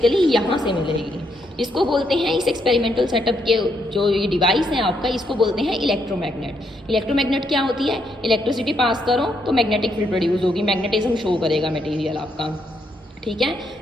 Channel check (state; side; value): normal; both; correlation 0.76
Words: यहाँ से मिलेगी। इसको बोलते हैं, इस एक्सपेरिमेंटल सेटअप के जो ये डिवाइस है आपका, इसको बोलते हैं इलेक्ट्रोमैग्नेट। इलेक्ट्रोमैग्नेट क्या होती है, इलेक्ट्रिसिटी पास करो तो मैग्नेटिक फील्ड प्रोड्यूस होगी, मैग्नेटिज्म शो करेगा मटेरियल आपका। ठीक है।